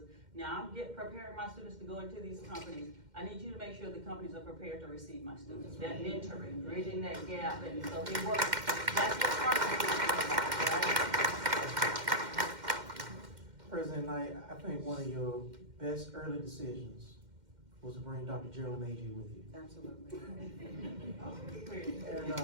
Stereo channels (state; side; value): late; left; 2.1 ms